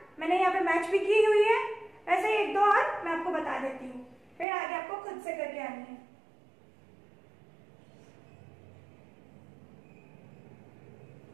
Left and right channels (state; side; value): drops out; left; at 4.5 s